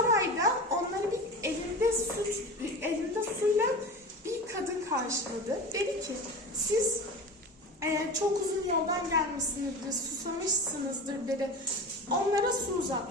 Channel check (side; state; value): both; normal; correlation 0.31